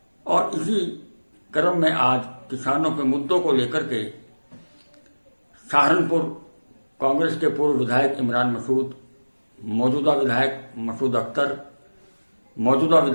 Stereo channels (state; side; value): inverted; both; correlation -1.00